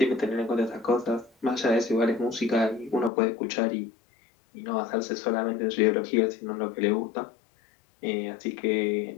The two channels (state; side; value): drops out; right; at 3.1 s